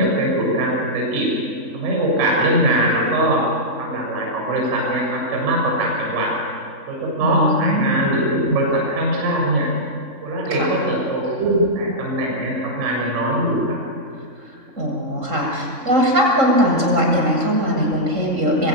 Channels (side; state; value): left; late; 3.5 ms